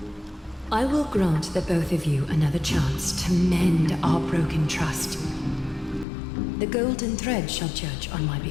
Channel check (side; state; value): right; drops out; at 6.1 s